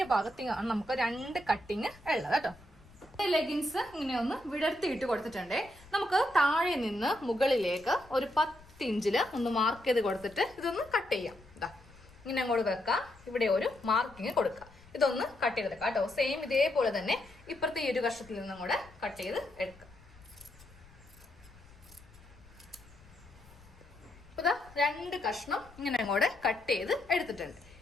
ഭാഗത്താണ് നമുക്ക് 2 കട്ടിങ് ഉള്ളത് കേട്ടോ. ലെഗിൻസ് ഇങ്ങനെ ഒന്ന് വിടർത്തിയിട്ട് കൊടുത്തിട്ടുണ്ട്. നമുക്ക് താഴെ നിന്ന് മുകളിലേക്ക് ഒരു 10 ഇഞ്ചില് ഒന്ന് മാർക്ക് ചെയ്ത് കൊടുത്തിട്ട് ഇതൊന്ന് കട്ട് ചെയ്യാം. ഇതാ ഇങ്ങനെ അങ്ങോട്ട് വെക്കാം. ഇവിടെ ഒരു മാർക്കിങ് കൊടുക്കാം. ഇതൊന്ന് കട്ട് ചെയ്തെടുക്കാം കേട്ടോ. സെയിം ഇതേപോലെ തന്നെ ഇപ്പുറത്തെ ഈ ഒരു കഷ്ണത്തിൽ നിന്നും കൂടെ കട്ട് ചെയ്ത് എടുക്കാം. ഇപ്പൊ 2 കഷ്ണം ഇങ്ങനെ അങ്ങോട്ട് കട്ട് ചെയ്ത് എടുത്തിട്ടുണ്ട്.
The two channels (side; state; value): left; noise; rumble, 24 dB below the sound